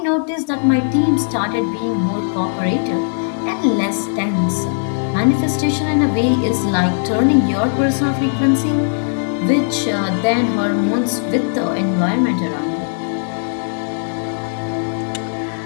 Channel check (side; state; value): right; silent; digital silence